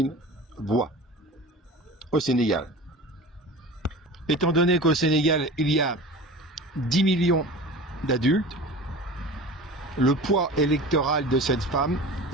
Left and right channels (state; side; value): normal; both; correlation 0.36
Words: voix au Sénégal. Étant donné qu'au Sénégal, il y a 10 millions d'adultes, le poids électoral de cette femme,